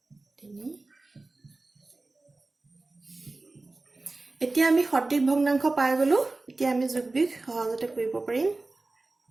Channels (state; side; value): quieter; left; 3.3 dB